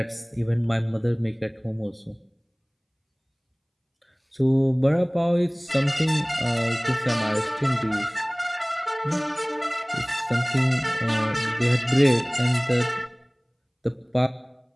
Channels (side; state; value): both; identical; correlation 1.00